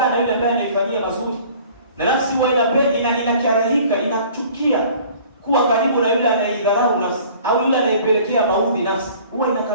na yule ambaye anaifanyia mazuri, na nafsi huwa inakarahika, inachukia kuwa karibu na yule anayeidharau nafsi au yule anayepelekea maudhi nafsi, huwa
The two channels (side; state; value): both; inverted; correlation -0.50